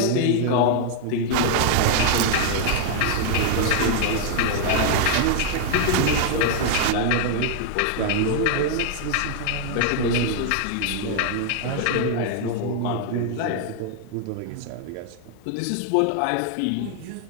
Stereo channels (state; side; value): different; both; correlation 0.00